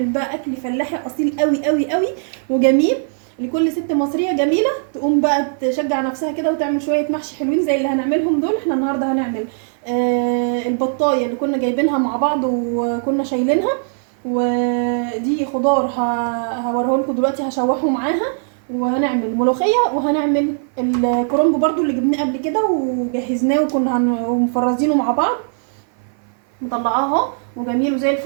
بقى اكل فلاحي اصيل قوي قوي قوي وجميل لكل ست مصريه جميله تقوم بقى تشجع نفسها كده وتعمل شويه محشي حلوين زي اللي هنعملهم دول. احنا النهارده هنعمل البطايه اللي كنا جايبينها مع بعض وكنا شايلينها، ودي خضار هوريه لكم دلوقتي هشوحه معاها، وهنعمل ملوخيه، وهنعمل الكرنب برضو اللي جبناه قبل كده وجهزناه وكنا مفرزينه مع بعض. مطلعاه اهو وجميل وزي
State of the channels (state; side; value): silent; left; 57 dB below the other